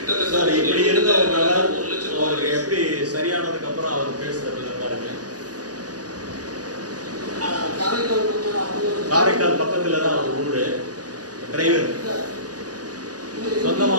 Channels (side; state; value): left; late; 0.68 ms